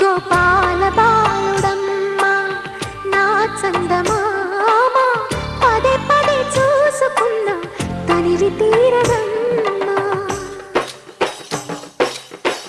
గోపాల బాలుడమ్మ నా చందమామ పదే పదే చూసుకున్నా తనివి తీరదమ్మా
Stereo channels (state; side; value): identical; both; correlation 1.00